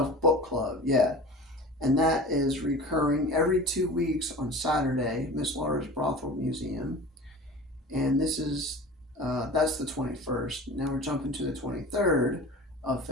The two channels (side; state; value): both; normal; correlation 0.37